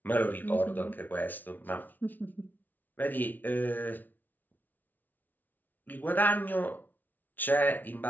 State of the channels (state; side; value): late; right; 0.083 ms